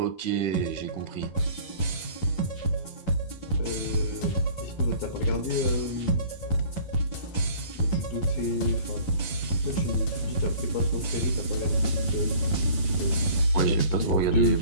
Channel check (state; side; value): late; right; 11 ms